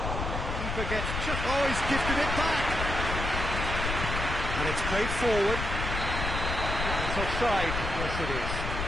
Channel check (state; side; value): noise; left; rumble, 3 dB below the sound